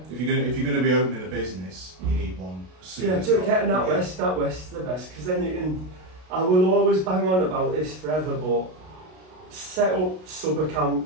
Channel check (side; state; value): left; late; 32 ms